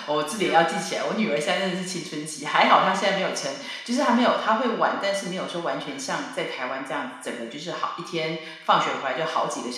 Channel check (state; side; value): identical; both; correlation 1.00